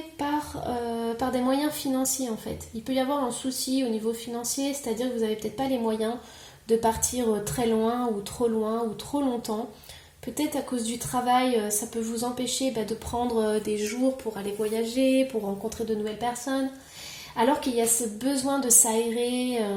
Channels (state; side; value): identical; both; correlation 1.00